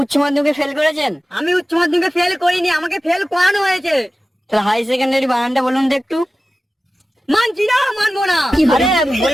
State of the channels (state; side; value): normal; both; correlation 0.95